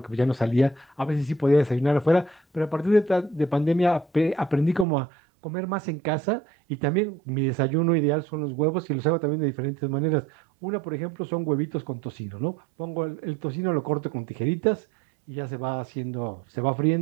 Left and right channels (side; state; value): left; drops out; at 4.9 s